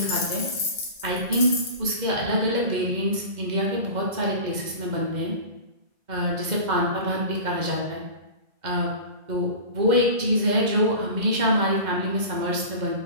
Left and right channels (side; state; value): left; late; 2.1 ms